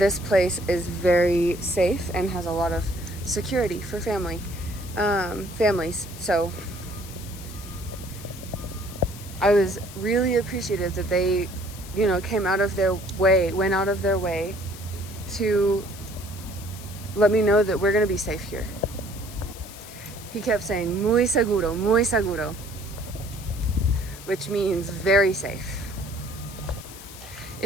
place is very safe and has a lot of security for families. So I was really appreciative that they, you know, went out of their way to let me know that we're gonna be safe here. He kept saying, muy seguro, which means very safe.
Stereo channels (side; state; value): left; noise; hiss, 16 dB below the sound